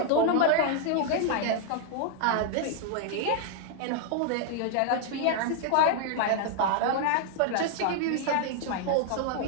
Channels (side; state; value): both; different; correlation 0.00